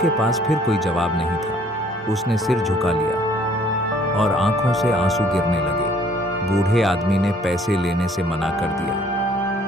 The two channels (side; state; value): both; normal; correlation 0.59